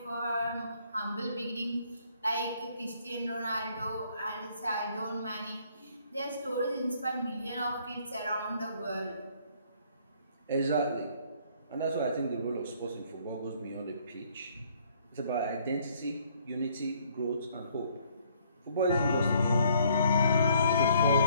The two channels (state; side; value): inverted; both; correlation -0.64